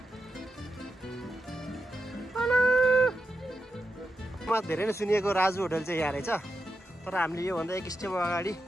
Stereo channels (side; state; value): both; normal; correlation 0.87